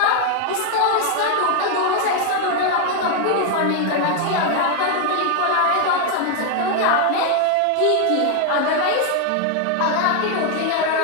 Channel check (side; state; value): both; different; correlation 0.00